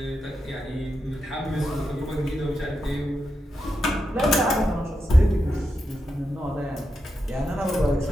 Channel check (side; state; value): both; normal; correlation 0.86